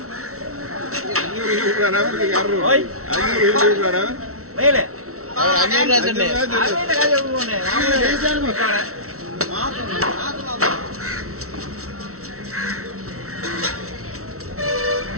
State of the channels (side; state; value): left; late; 0.63 ms